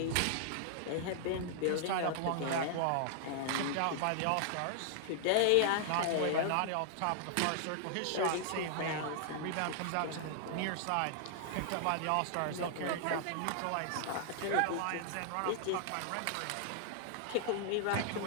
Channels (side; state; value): both; different; correlation -0.01